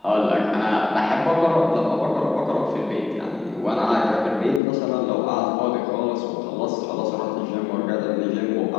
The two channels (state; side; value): drops out; right; at 4.6 s